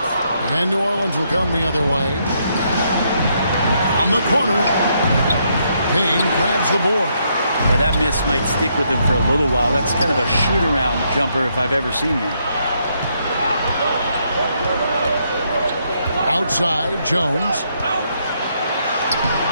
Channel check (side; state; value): both; inverted; correlation -0.75